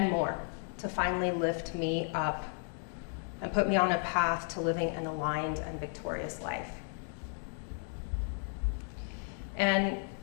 more to finally lift me up and put me on a path to living an aligned and victorious life. And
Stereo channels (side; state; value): right; silent; 55 dB below the other